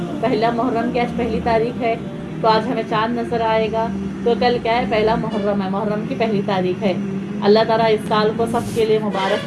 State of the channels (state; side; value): identical; both; correlation 1.00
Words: پہلا محرم کی آج پہلی تاریخ ہے، تو آج ہمیں چاند نظر آئے گا۔ تو کل کیا ہے، پہلا محرم ہے، محرم کی پہلی تاریخ ہے۔ اللہ تعالیٰ اس سال کو سب کے لیے مبارک